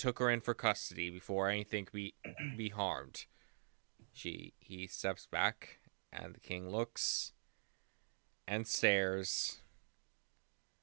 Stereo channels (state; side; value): silent; left; digital silence